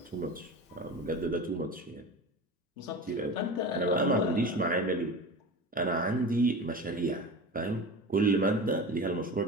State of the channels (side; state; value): both; normal; correlation 0.31